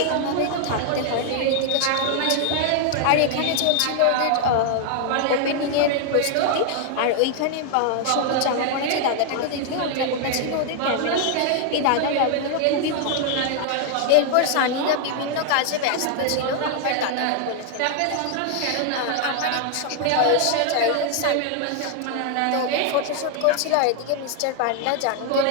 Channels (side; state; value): both; different; correlation 0.00